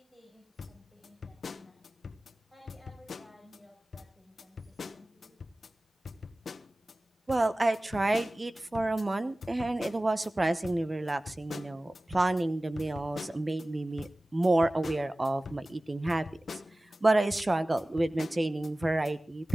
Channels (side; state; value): both; normal; correlation 0.97